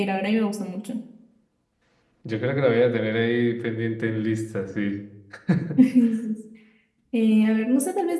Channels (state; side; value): identical; both; correlation 1.00